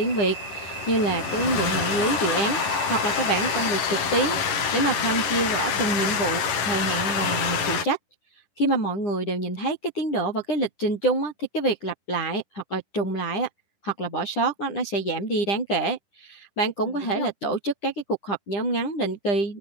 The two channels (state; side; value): late; right; 10 ms